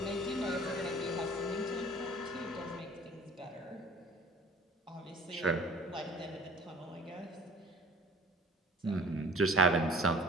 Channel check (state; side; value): normal; both; correlation 0.49